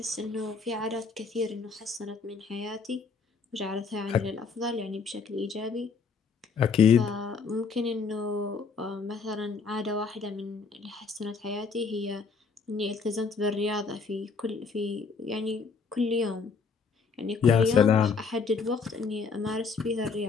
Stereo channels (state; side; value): quieter; right; 5.0 dB